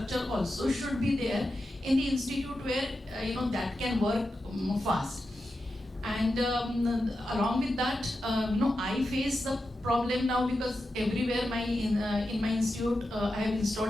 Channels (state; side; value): normal; both; correlation 0.90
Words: also should be there in the institute where, that can work fast. And along with that, I face the problem now because everywhere in my institute, I have